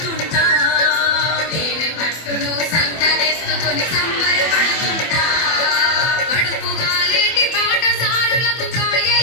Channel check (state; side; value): late; right; 24 ms